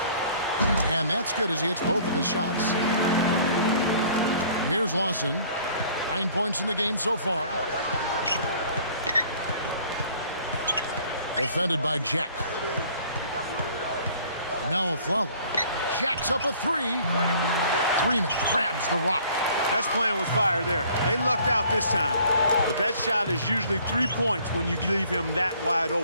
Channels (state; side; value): inverted; both; correlation -0.54